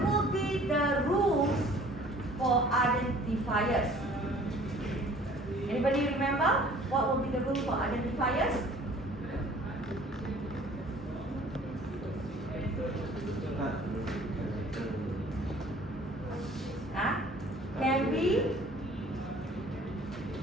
will be the rules for identifiers? Anybody remember what will be the rule for identifiers? Can be,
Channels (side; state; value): both; normal; correlation 0.52